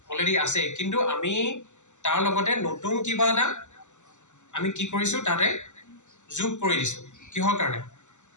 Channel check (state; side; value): late; right; 0.84 ms